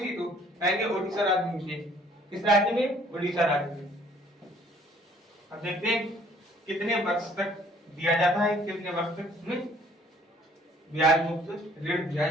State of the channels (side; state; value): both; normal; correlation 0.59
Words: तो कहेंगे ओडिशा राज्य में हुई। किस राज्य में? ओडिशा राज्य में। अब देखते हैं कितने वर्ष तक दिया जाता है, कितने वर्ष तक में ब्याज मुक्त ऋण दिया